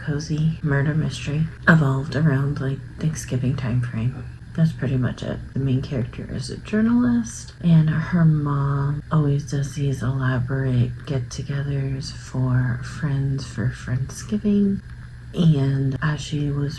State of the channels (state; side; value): identical; both; correlation 1.00